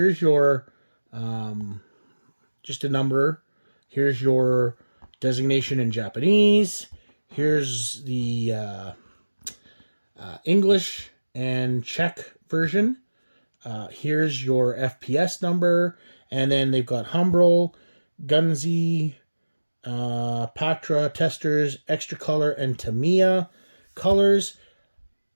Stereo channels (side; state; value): both; inverted; correlation -1.00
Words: your just a number. Here's your designation in Japanese. Here's the English and Czech version. Here's your FPS number, and then they've got Humbrol, Gunzi, Pactra, Testers, Extra Color, and Tamiya colors.